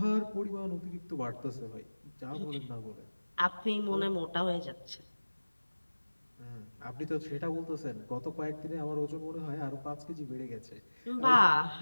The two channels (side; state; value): both; inverted; correlation -1.00